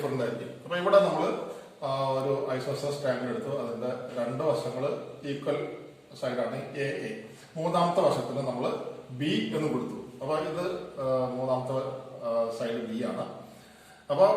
ആയിരിക്കും. അപ്പൊ ഇവിടെ നമ്മൾ ഒരു ഐസോസെലസ് ട്രയാങ്കിൾ എടുത്തു, അതിന്റെ 2 വശങ്ങൾ ഈക്വൽ സൈഡാണ് എ എ. 3ാമത്തെ വശത്തിന് നമ്മൾ ബി എന്ന് കൊടുത്തു. അപ്പൊ ഇത് 3ാമത്തെ സൈഡ് ബി ആണ്. അപ്പൊ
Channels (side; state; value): both; identical; correlation 1.00